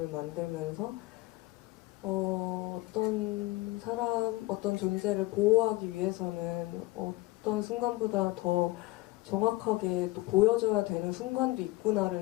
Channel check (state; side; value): quieter; right; 19.9 dB